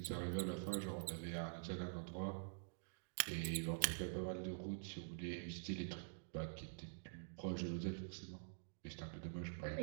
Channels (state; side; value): silent; left; digital silence